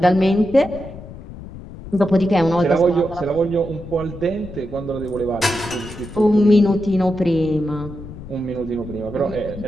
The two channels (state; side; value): noise; left; rumble, 13 dB below the sound